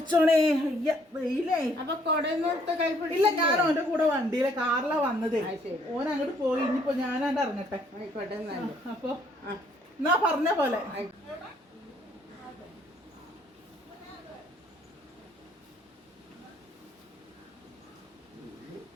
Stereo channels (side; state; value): both; normal; correlation 0.65